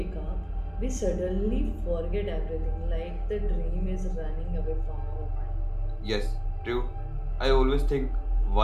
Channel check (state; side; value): identical; both; correlation 1.00